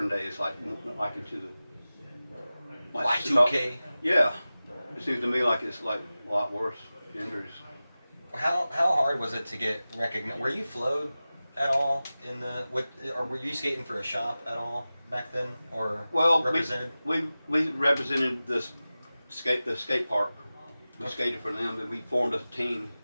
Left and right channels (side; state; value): both; inverted; correlation -0.96